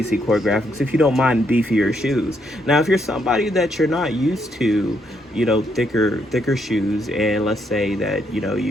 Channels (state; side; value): normal; both; correlation 0.75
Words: Choreographics if you don't mind beefier shoes. Now, if you're somebody that you're not used to, thicker shoes, and let's say that,